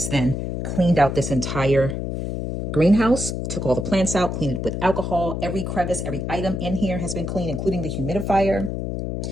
then cleaned out this entire greenhouse, took all the plants out, cleaned it with alcohol. Every crevice, every item in here has been cleaned, including the humidifier.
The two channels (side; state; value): left; noise; hum, 3 dB below the sound